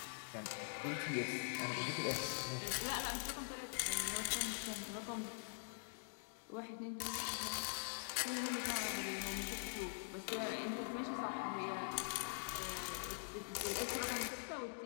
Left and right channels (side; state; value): right; silent; digital silence